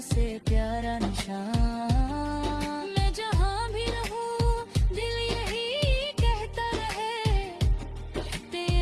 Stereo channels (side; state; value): both; identical; correlation 1.00